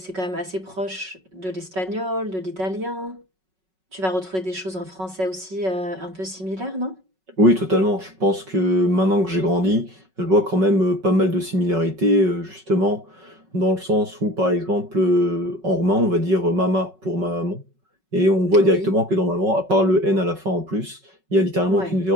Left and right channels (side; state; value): left; late; 5.4 ms